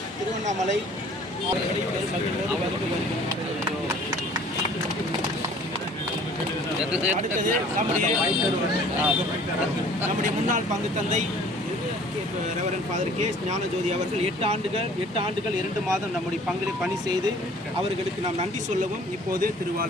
திருவண்ணாமலை அடுத்தது நம்முடைய முன்னாள் பங்கு தந்தை ரெவரண்ட் ஃபாதர் கே ஞானஜோதி அவர்கள் 8 ஆண்டுகள் 2 மாதம் நம்முடைய பங்கில் பணி செய்து அவர்களுக்கு நாம் நன்றி சொல்லவும் இப்போது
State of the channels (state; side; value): normal; both; correlation 0.51